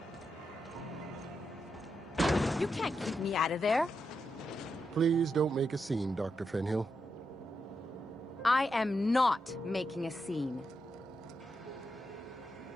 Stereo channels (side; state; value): both; normal; correlation 0.85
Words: You can't keep me out of there. Please don't make a scene, Dr. Fenhill. I am not making a scene.